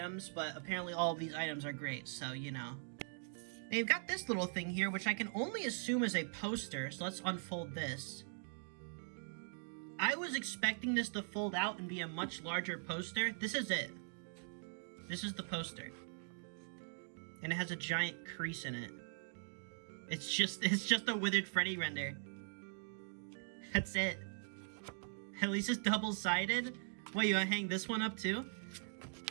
but apparently all of these items are great, so, you know. They've got this little thing here, which I can only assume is a poster, so let's unfold this. I was expecting this to fold out and be a much larger poster. This is it. This is the poster. And it has a giant crease in it. It's just a Withered Freddy render. That's it. At least it's double-sided. What, you wanna hang this one up too?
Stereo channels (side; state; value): left; silent; digital silence